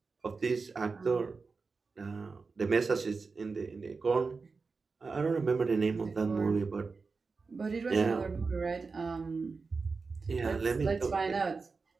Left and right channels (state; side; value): quieter; left; 4.5 dB